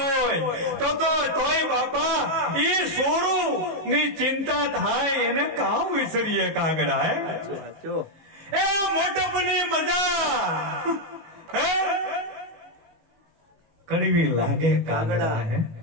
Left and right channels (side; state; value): left; late; 18 ms